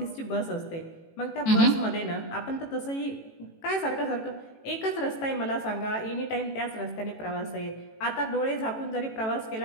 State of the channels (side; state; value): right; late; 18 ms